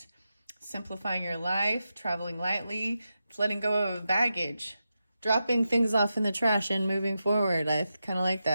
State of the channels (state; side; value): inverted; both; correlation -0.89